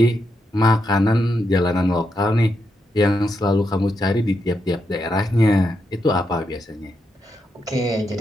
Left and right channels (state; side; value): normal; both; correlation 0.83